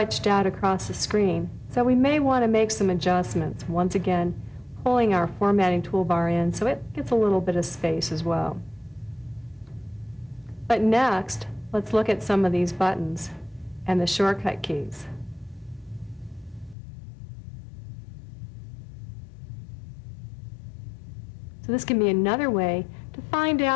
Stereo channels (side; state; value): right; drops out; at 16.8 s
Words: out across the screen, so we may want to make some adjustments. Once again, pulling our formatting toolbar in so it gets a little bit of space as well. But next, let's look at some of these buttons and the shortcut keys. So this can be another way to find